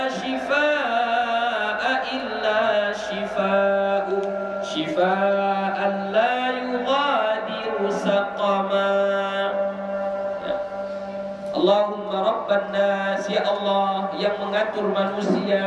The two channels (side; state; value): both; identical; correlation 1.00